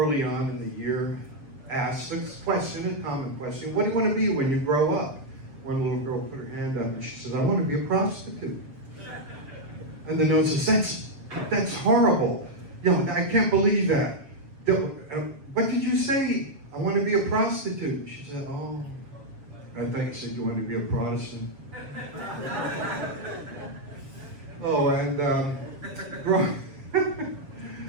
on in the year, asked a question, a common question, what do you want to be when you grow up? One little girl put her hand up and she said, I want to be a prostitute. And the nun says, that's horrible. I can't believe that. What did you say? I want to be a prostitute. She said, oh, I thought you said you wanted to be a Protestant. Oh, and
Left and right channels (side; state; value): left; late; 7.3 ms